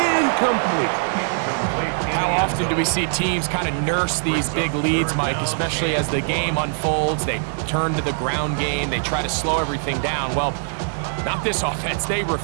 incomplete. How often do we see teams kind of nurse these big leads, Mike, especially as the game unfolds? They turn to the ground game. They try to slow everything down. Well, not this offense. They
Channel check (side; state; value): left; silent; digital silence